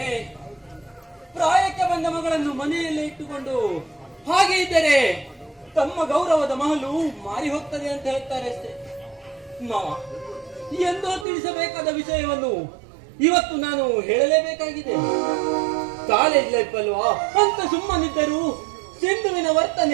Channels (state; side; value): drops out; left; at 11.2 s